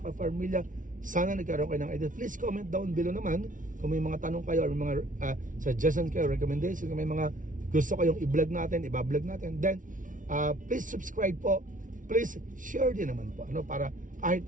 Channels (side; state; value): left; late; 0.38 ms